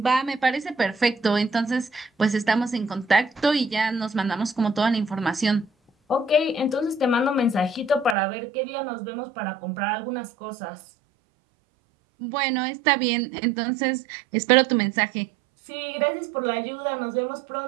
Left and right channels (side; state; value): left; drops out; at 8.2 s